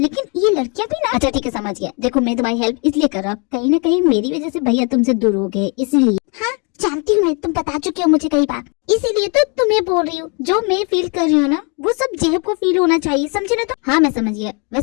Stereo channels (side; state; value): right; quieter; 34.3 dB